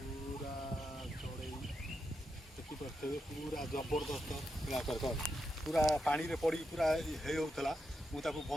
चढ़ई देखिपे पूरा जबरदस्त पूरा पानी रे पड़ी पूरा होता मुझे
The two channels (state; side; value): normal; both; correlation 0.85